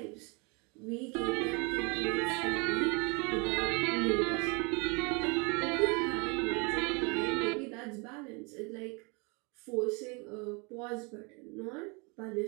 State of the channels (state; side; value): quieter; left; 30.8 dB